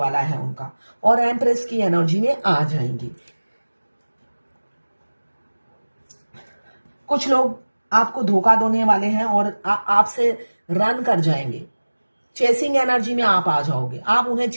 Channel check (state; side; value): inverted; both; correlation -1.00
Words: है उनका, और एम्प्रेस की एनर्जी में आ जाएंगी। कुछ लोग आपको धोखा देने वाले हैं और आपसे रन कर जाएंगे, चेसिंग एनर्जी में आप आ जाओगे, आप उन्हें